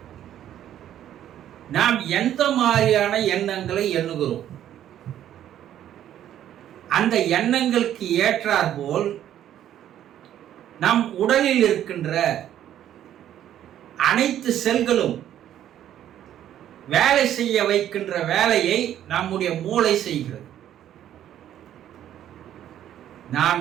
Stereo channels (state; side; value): quieter; left; 11.2 dB